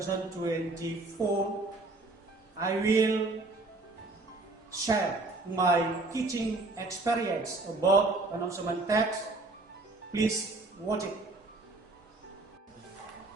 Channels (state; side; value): quieter; left; 3.2 dB